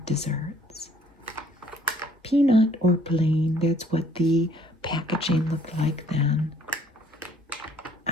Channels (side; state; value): both; normal; correlation 0.61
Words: desserts. Peanut or plain, that's what the packaging looked like then.